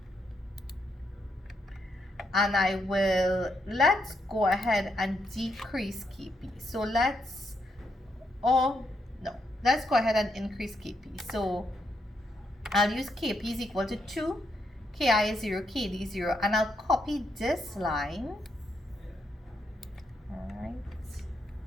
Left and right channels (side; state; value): both; normal; correlation 0.79